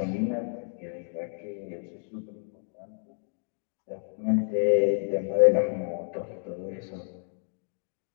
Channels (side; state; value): right; silent; digital silence